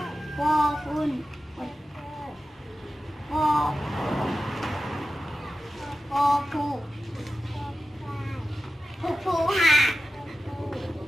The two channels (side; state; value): both; normal; correlation 0.93